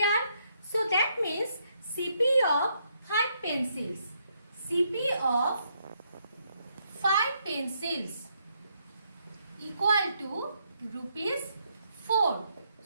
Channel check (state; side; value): inverted; both; correlation -0.74